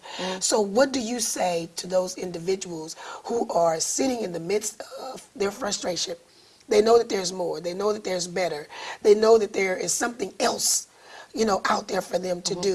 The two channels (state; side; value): identical; both; correlation 1.00